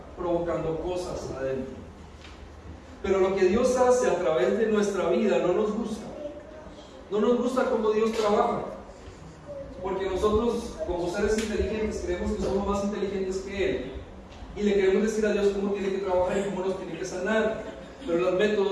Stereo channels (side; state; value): both; identical; correlation 1.00